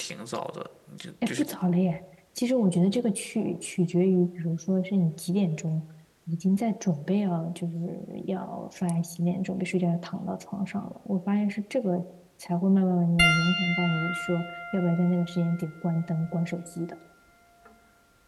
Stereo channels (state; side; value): identical; both; correlation 1.00